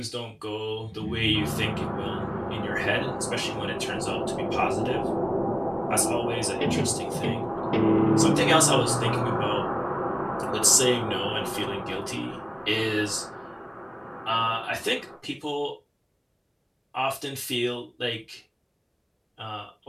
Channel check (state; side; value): identical; both; correlation 1.00